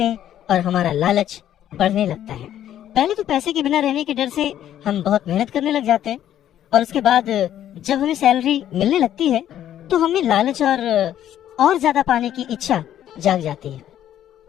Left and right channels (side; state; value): right; quieter; 11.3 dB